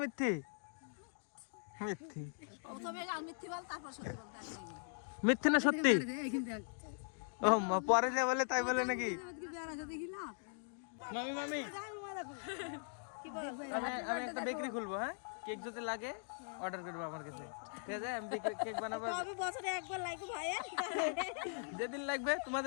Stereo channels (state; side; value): silent; right; digital silence